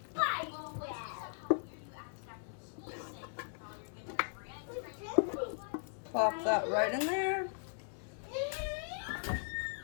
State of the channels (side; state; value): right; silent; 52 dB below the other